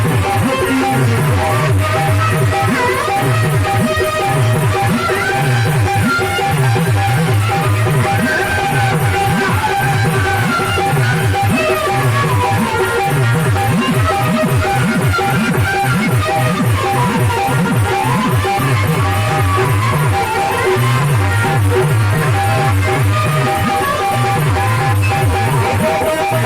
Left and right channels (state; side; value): identical; both; correlation 1.00